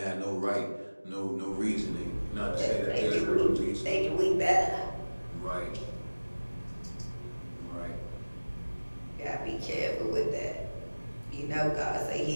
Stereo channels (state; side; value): inverted; both; correlation -1.00